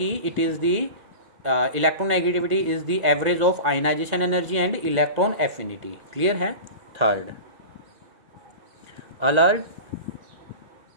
it is the electron negativity is the average of ionization energy and electron affinity, clear है। Third Allred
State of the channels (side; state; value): left; late; 2.1 ms